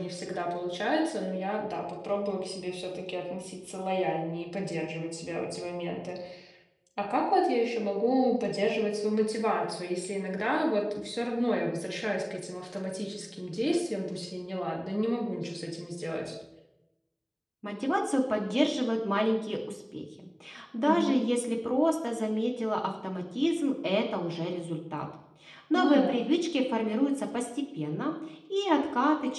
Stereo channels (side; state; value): both; identical; correlation 1.00